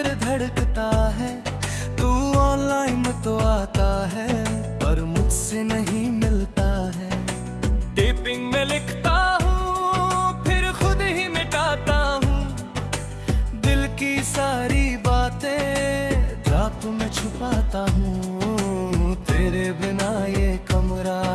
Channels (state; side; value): identical; both; correlation 1.00